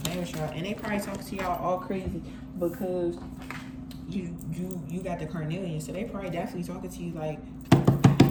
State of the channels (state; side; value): identical; both; correlation 1.00